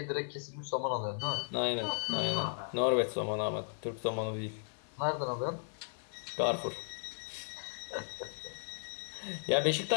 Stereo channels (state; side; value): silent; right; digital silence